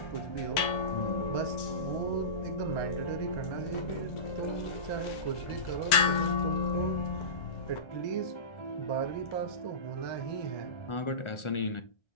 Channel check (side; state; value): right; late; 1.3 ms